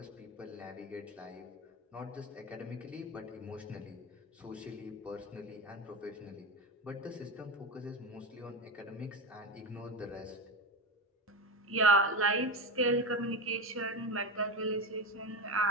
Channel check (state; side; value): normal; both; correlation 0.19